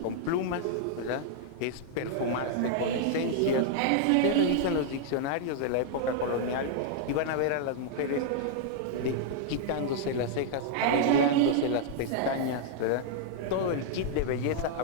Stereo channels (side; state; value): both; different; correlation -0.01